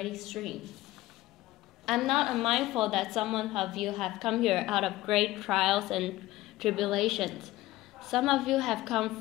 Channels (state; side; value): quieter; right; 17.1 dB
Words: stream. I'm not unmindful that some of you have come here out of great trials and tribulations. Some of you have come